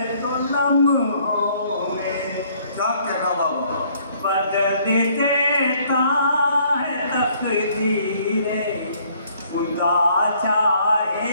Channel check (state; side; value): inverted; both; correlation -0.63